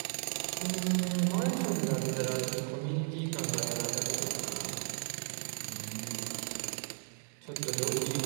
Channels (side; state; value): left; silent; digital silence